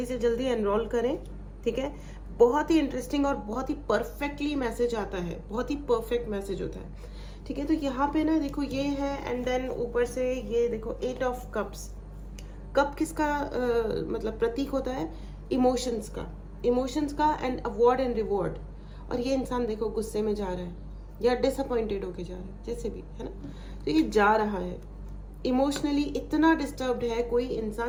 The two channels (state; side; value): identical; both; correlation 1.00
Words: से जल्दी एनरोल करें, ठीक है। बहुत ही इंटरेस्टिंग और बहुत ही परफेक्टली मैसेज आता है, बहुत ही परफेक्ट मैसेज होता है, ठीक है। तो यहाँ पे ना देखो ये है, एंड देन ऊपर से ये देखो 8 ऑफ कप्स। कप किसका मतलब प्रतीक होता है? इमोशंस का, इमोशंस का एंड अवॉर्ड एंड रिवॉर्ड, और ये इंसान देखो गुस्से में जा रहा है या डिसअपॉइंटेड होके जा रहा है, जैसे भी है ना, तो ये जा रहा है इमोशनली इतना डिस्टर्ब्ड है। कोई